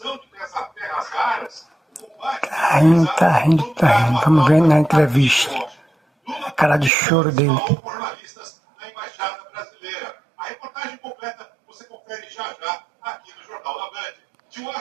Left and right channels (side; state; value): left; drops out; at 6.9 s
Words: de terras raras, o combate... Tá rindo. Vamos ver na entrevista. A cara de choro dele. Falou com jornalistas na Embaixada Brasileira. A reportagem completa você confere já aqui no Jornal da Band. De